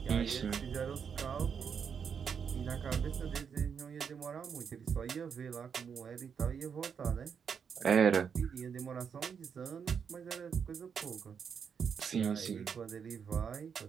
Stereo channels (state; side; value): quieter; left; 6.9 dB